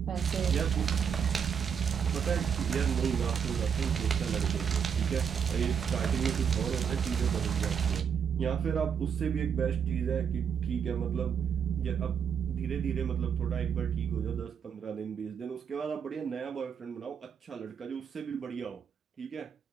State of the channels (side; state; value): left; quieter; 7.3 dB